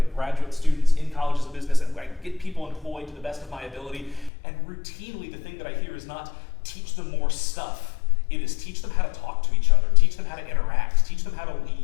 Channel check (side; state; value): right; drops out; at 4.3 s